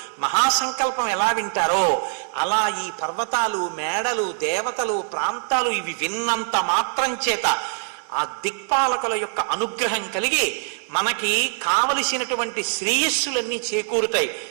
మహాసంకల్పం ఎలా వింటారో అలా ఈ పర్వతాలు, మేడలు, దేవతలు, ప్రాంతాలు ఇవి విన్నంత మాత్రం చేత ఆ దిక్పాలకుల యొక్క అనుగ్రహం కలిగి మనకి కావలసినటువంటి శ్రేయస్సులన్నీ చేకూరుతాయి.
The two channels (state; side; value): silent; left; digital silence